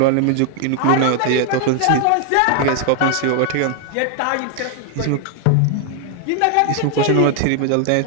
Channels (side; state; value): both; different; correlation 0.00